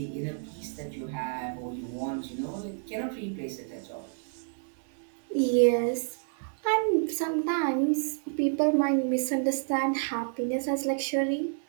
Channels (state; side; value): silent; left; digital silence